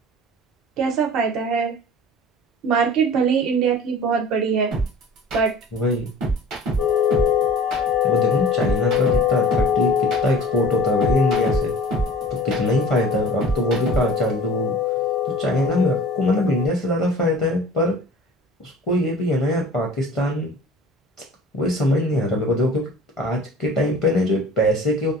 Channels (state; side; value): normal; both; correlation 0.43